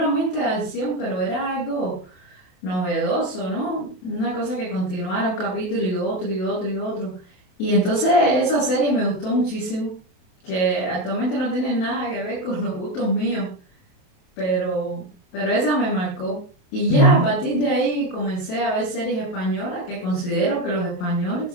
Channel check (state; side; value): late; right; 28 ms